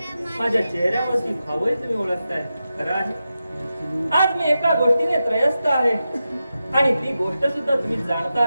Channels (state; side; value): inverted; both; correlation -0.90